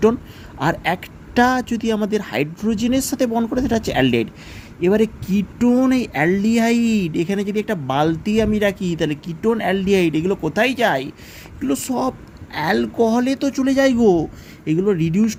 আর একটা যদি আমাদের হাইড্রোজেনের সাথে বন্ড করে, সেটা হচ্ছে অ্যালডিহাইড। এবারে কিটোন, এই অ্যালডিহাইড, এখানে যদি একটা বালতি আমি রাখি, তাহলে কিটোন অ্যালডিহাইড এগুলো কোথায় যায়? এগুলো সব অ্যালকোহলে তো চলে যায় গো। এগুলো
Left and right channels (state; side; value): identical; both; correlation 1.00